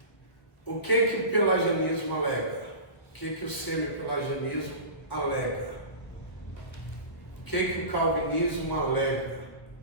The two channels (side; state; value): right; late; 1.4 ms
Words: O que o pelagianismo alega? O que o semi-pelagianismo alega? O que o calvinismo alega?